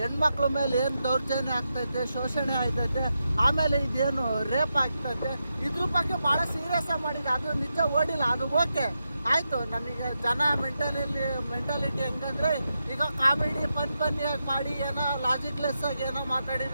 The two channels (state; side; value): inverted; both; correlation -0.87